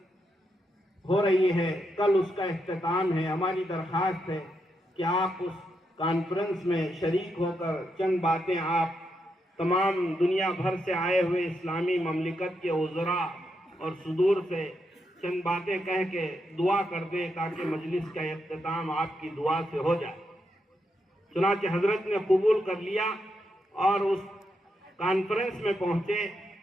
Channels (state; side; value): normal; both; correlation 0.82